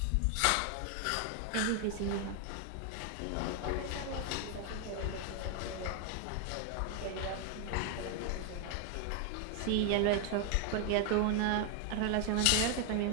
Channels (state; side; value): different; both; correlation 0.00